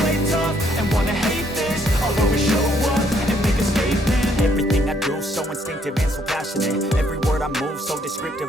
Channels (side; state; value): both; normal; correlation 0.69